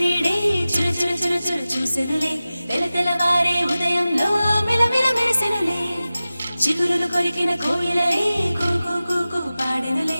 చుర చుర చుర చుర చూసెనులే తెలతెలవారే ఉదయంలో మిలమిల మెరిసెనులే చిగురులు కొరికిన కోయిలలే కూ కూ కూ కూ పాడెనులే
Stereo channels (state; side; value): inverted; both; correlation -0.96